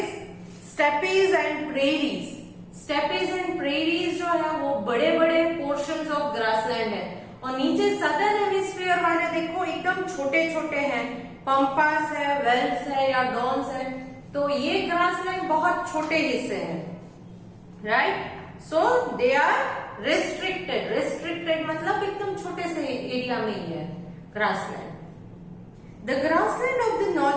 steppes and prairies. Steppes and prairies जो है वो बड़े बड़े पोर्शंस ऑफ ग्रासलैंड है, और नीचे सदर्न हेमिस्फीयर वाले देखो एकदम छोटे छोटे हैं, पंपास है, वेल्स है या डॉन्स है। तो ये ग्रासलैंड बहुत छोटे हिस्से हैं, right. So they are restricted. Restricted मतलब एकदम छोटे से एरिया में ही है grassland. The grassland of the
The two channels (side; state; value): both; identical; correlation 1.00